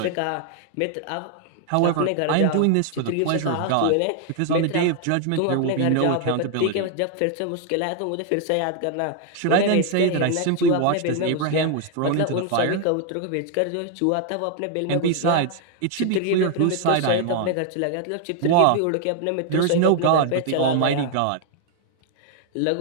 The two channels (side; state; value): both; different; correlation 0.00